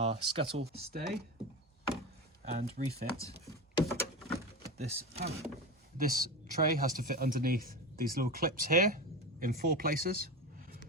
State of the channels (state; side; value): normal; both; correlation 0.23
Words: scuttle stay and refit this panel. This tray has to fit underneath these little clips here in 4 places.